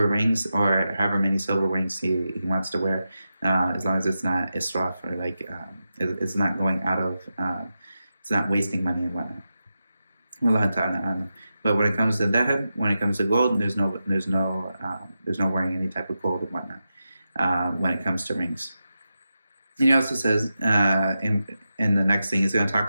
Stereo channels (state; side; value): inverted; both; correlation -0.90